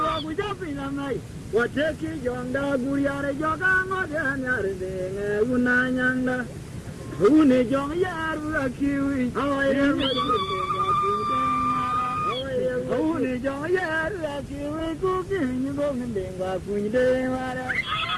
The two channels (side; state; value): both; identical; correlation 1.00